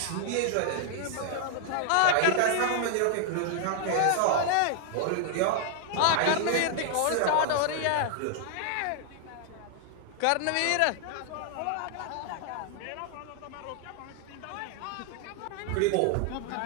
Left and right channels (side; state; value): both; different; correlation 0.00